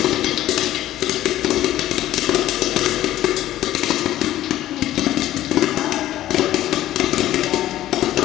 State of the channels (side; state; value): right; quieter; 13.8 dB